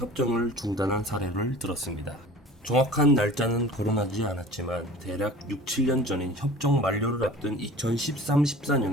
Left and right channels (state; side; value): normal; both; correlation 0.42